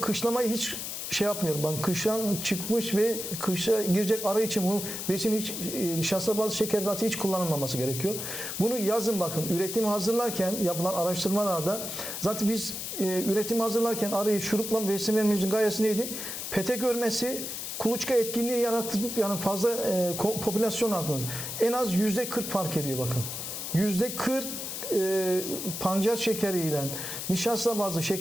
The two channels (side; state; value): left; noise; hiss, 6 dB below the sound